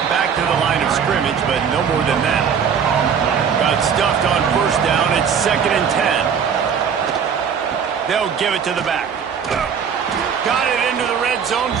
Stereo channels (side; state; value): left; quieter; 7.1 dB